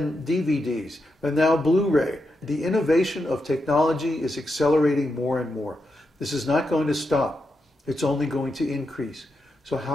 DVDs, and now Blu-ray. The innovation of technology is accelerating more and more. This is not going to stop. It's only going to increase. So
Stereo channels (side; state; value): both; normal; correlation 0.85